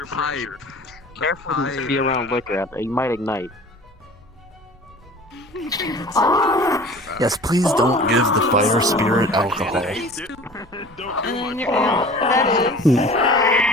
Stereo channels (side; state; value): both; normal; correlation 0.43